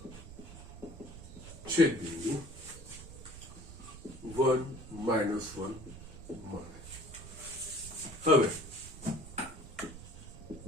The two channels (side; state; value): right; noise; rumble, 14 dB below the sound